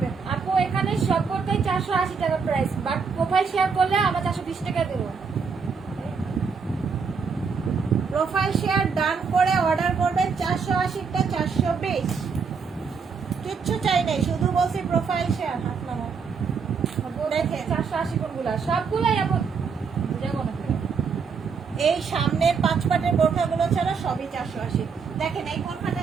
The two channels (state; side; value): quieter; left; 5.6 dB